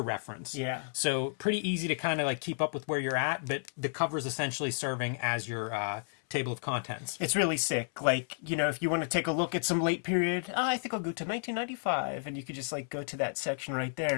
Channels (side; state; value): right; silent; 56 dB below the other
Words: Yeah. So pretty easy to kind of like keep up with where you're at, but the cover is essentially serving as your table of contents. It's really sick. Like, if you want to take a look at some late period, I think I'll go to 1995, and you could just like go to that section right there,